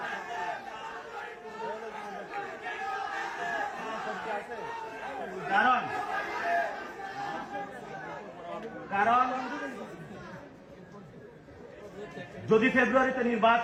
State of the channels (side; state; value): both; identical; correlation 1.00